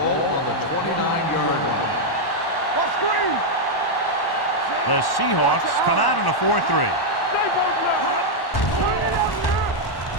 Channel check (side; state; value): right; late; 1.1 ms